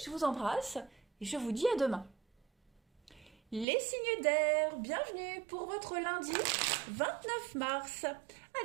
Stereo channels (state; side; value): drops out; left; at 3.7 s